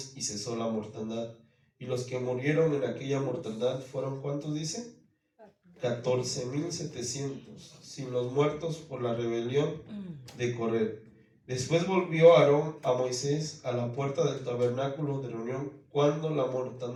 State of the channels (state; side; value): identical; both; correlation 1.00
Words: y cesó la mortandad. Y los que murieron en aquella mortandad fueron, ¿cuántos dice? 14,700, sin los muertos por la rebelión de Coré. Después volvió Aarón a Moisés a la puerta del tabernáculo de reunión cuando la